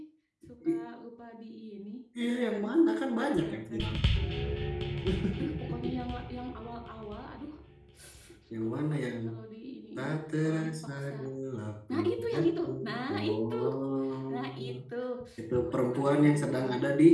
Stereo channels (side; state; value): both; identical; correlation 1.00